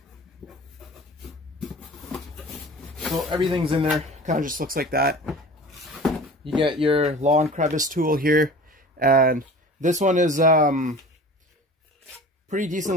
So everything's in there, kind of just looks like that. You get your lawn crevice tool here, and this one is pretty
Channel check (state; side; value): normal; both; correlation 0.41